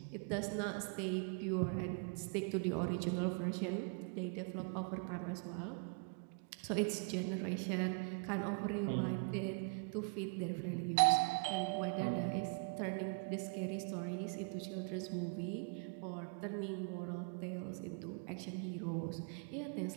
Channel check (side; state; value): left; quieter; 35.1 dB